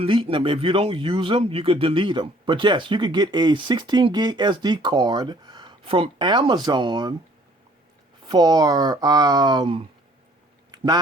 them. If you don't use them, you could delete them. But yes, you could get a 16 gig SD card from Amazon for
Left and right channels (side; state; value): both; normal; correlation 0.58